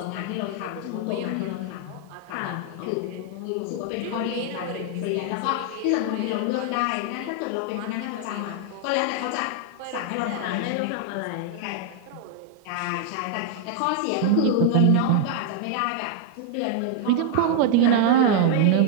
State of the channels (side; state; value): both; different; correlation 0.00